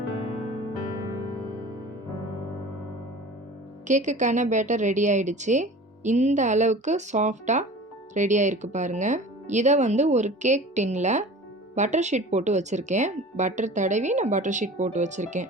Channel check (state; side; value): normal; both; correlation 0.40